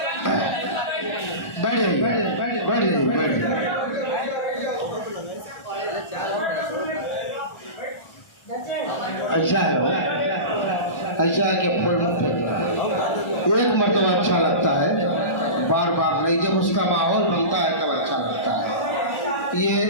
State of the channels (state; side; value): late; right; 1.4 ms